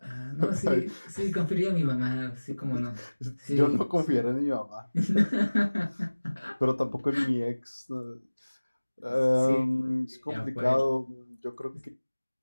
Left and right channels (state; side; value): inverted; both; correlation -1.00